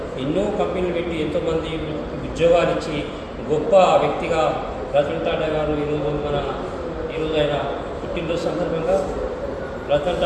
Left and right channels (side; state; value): both; identical; correlation 1.00